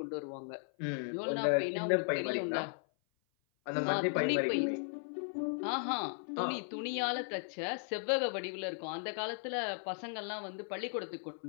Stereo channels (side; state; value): right; silent; 54 dB below the other